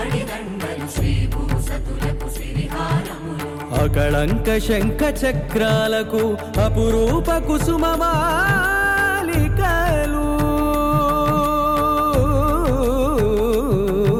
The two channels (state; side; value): identical; both; correlation 1.00